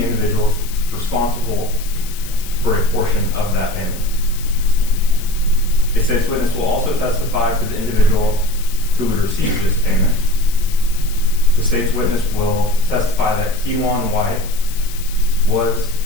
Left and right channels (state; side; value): noise; left; hiss, 14 dB below the sound